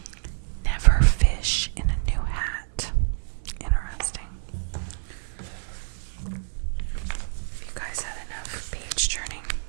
Never fish in a new hat. Interesting. If you guys had enough page turning.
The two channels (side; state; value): left; silent; digital silence